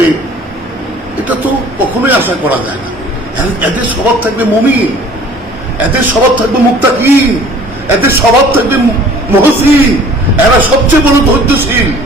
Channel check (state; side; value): normal; both; correlation 0.50